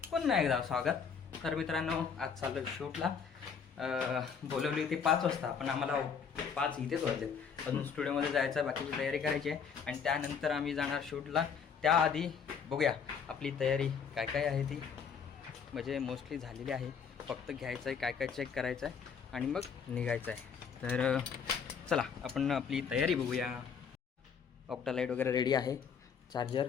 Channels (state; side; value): quieter; right; 6.6 dB